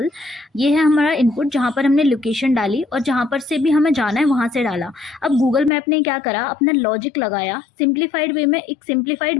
ये है हमारा इनपुट जहाँ पर हमने लोकेशन डाली और जहाँ पर से भी हमें जाना है वहाँ से डाला। अब गूगल मैप ने क्या करा, अपना लॉजिक लगाया, सिंप्लीफाइड वे में एक सिंप्लीफाइड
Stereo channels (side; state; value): right; drops out; at 5.7 s